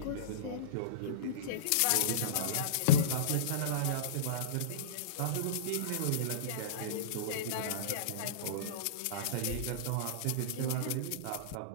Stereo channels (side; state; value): both; different; correlation -0.05